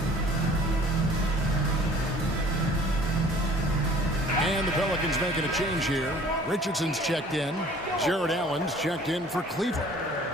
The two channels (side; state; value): both; normal; correlation 0.52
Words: And the Pelicans making a change here. Richardson's checked in. Jared Allen's checked in for Cleveland.